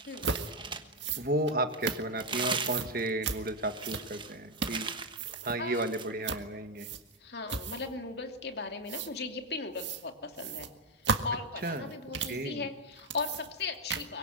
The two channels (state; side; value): normal; both; correlation 0.06